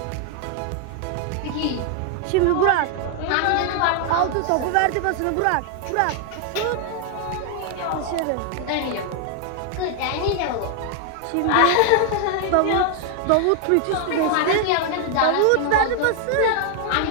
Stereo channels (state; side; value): different; both; correlation 0.00